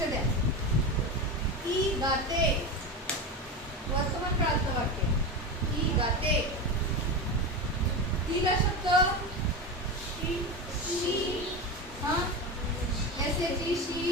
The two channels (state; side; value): normal; both; correlation 0.21